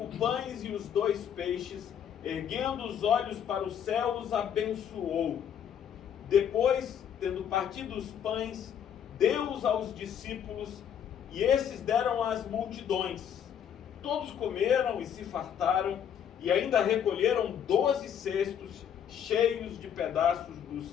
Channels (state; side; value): quieter; right; 8.8 dB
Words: pães e os 2 peixes, erguendo os olhos para o céu, os abençoou. Depois, tendo partido os pães, deu-os aos discípulos, e esses deram às multidões. Todos comeram e se fartaram, e ainda recolheram 12 cestos cheios de pedaços